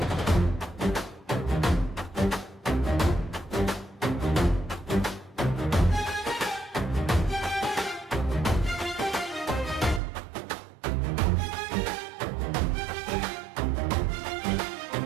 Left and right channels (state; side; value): drops out; left; at 10.0 s